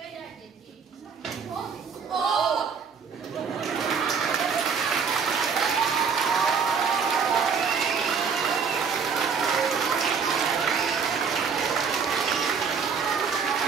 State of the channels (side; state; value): left; quieter; 6.1 dB